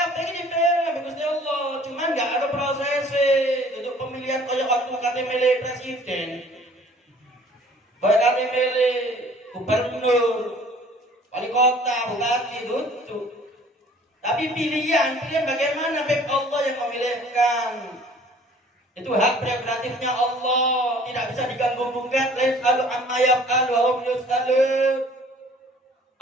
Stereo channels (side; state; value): both; normal; correlation 0.53